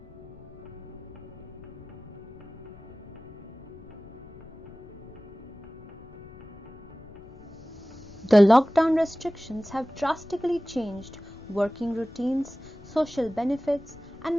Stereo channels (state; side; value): noise; left; rumble, 19 dB below the sound